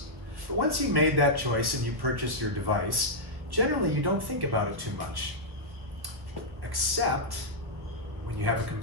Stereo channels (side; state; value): left; late; 1.5 ms